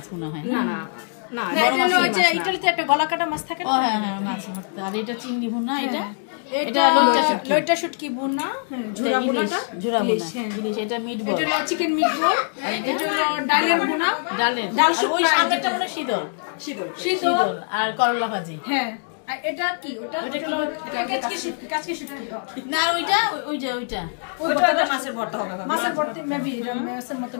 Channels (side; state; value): right; silent; digital silence